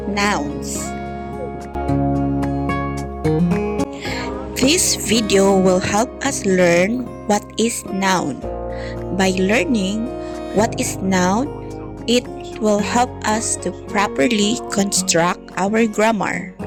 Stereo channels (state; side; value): identical; both; correlation 1.00